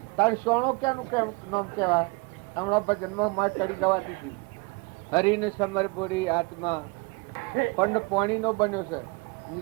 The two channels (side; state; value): left; quieter; 29.0 dB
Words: તારે સોનો ક્યાંનું નામ કહેવાય? હમણાં ભજનમાં માં ચડી ગવાતી હતી. હરિને સમર બોરી આત્મા પંડ પાણીનો બન્યો છે,